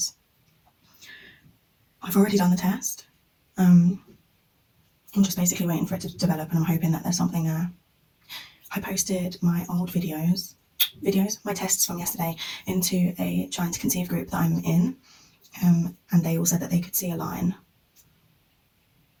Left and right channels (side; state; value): both; identical; correlation 1.00